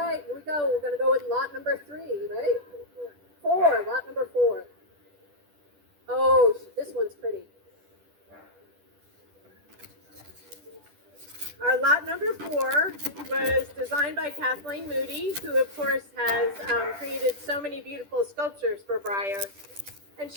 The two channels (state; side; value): late; left; 10 ms